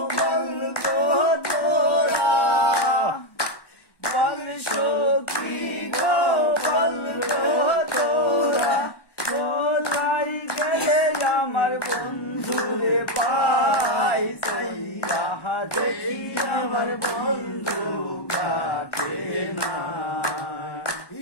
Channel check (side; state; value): right; late; 1.2 ms